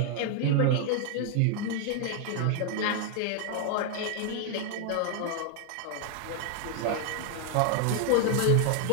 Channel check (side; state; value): both; different; correlation 0.00